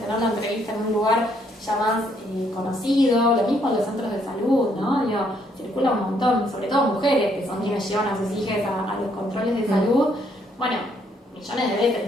tener la entrevista en un lugar ya más conocido, lo mismo en los centros de salud, ¿no? Circula un montón, sobre todo mujeres que son quienes llevan a sus hijas a los controles de salud. Bueno, millones de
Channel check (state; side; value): normal; both; correlation 0.70